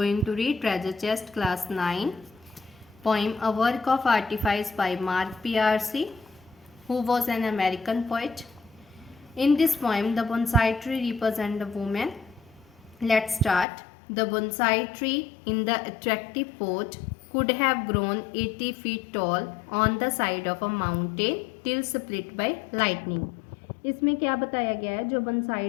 to read Treasure Chest Class 9 poem A Work of Artifice by Mark P.R.C., who was an American poet. In this poem, the bonsai tree represents a woman. Let's start. The bonsai tree in the attractive pot could have grown 80 feet tall on the side of a mountain till split by lightning. इसमें क्या बताया गया है, जो बंसाई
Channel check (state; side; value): drops out; right; at 13.7 s